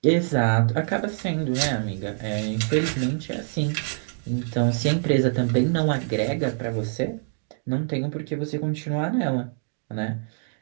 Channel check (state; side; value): silent; left; digital silence